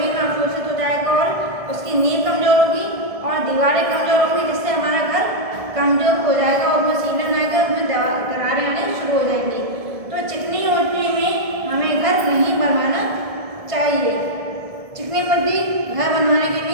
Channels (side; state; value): left; late; 1.6 ms